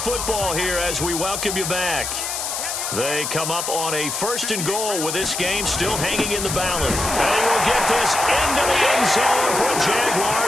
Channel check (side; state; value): left; noise; hiss, 3 dB below the sound